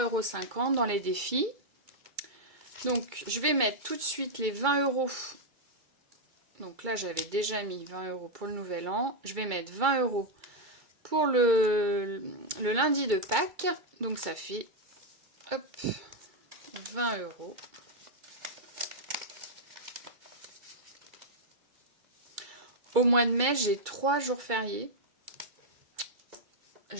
€ dans les défis. Donc, je vais mettre tout de suite les 20 €. Donc là, j'avais déjà mis 20 € pour le nouvel an. Je vais mettre 20 € pour le lundi de Pâques. Donc ça fait, hop, 20 €. Au mois de mai, j'ai 3 jours fériés.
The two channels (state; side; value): late; left; 2.2 ms